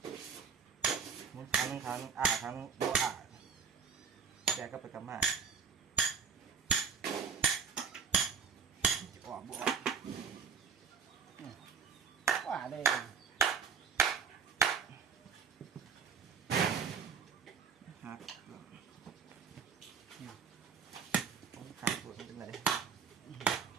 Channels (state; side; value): quieter; left; 6.6 dB